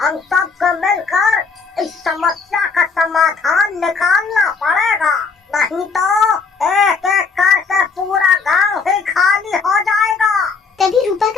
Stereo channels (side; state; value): right; quieter; 4.9 dB